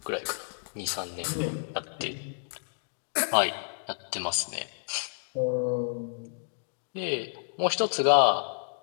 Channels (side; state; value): right; silent; digital silence